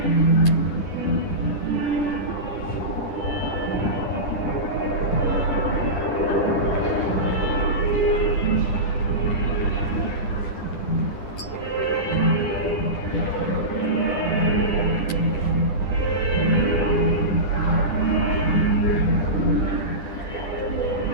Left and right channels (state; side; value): late; right; 10 ms